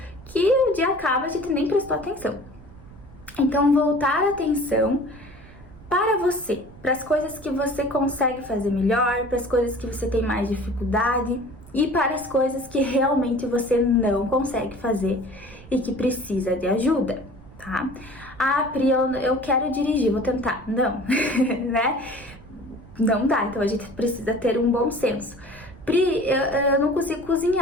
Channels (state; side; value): noise; right; rumble, 20 dB below the sound